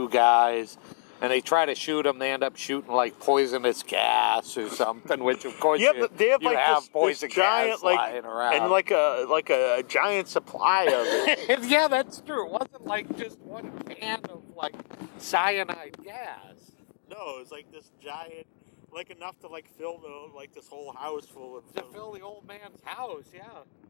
guys, and they try to shoot him. They end up shooting like poisonous gas or something, which of course but they have, you like, have this poison giant, gas lying around. And like a giant supply of it. Yeah, that's true. It wasn't like just one can of like cyanide gas. No, it was like this giant, like enough to like fill this whole house full of. To fill the old man's house, yeah.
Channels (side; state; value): right; silent; 60 dB below the other